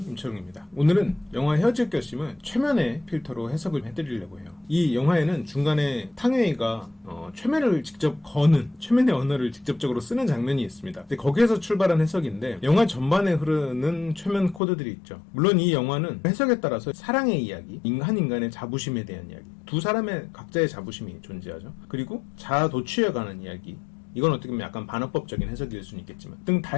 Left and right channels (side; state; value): right; drops out; at 14.6 s